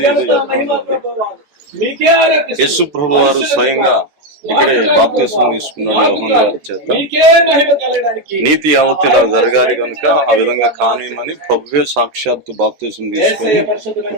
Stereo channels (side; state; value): left; late; 13 ms